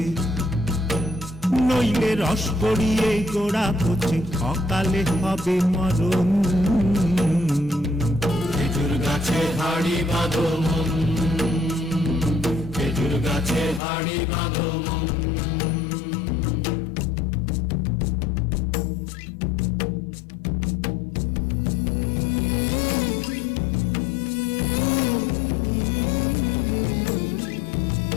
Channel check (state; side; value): drops out; right; at 13.8 s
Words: নইলে রস গড়িয়ে গোড়া পচে, অকালে হবে মরণ। খেজুর গাছে হাড়ি বাঁধো মন, খেজুর গাছে হাড়ি বাঁধো মন।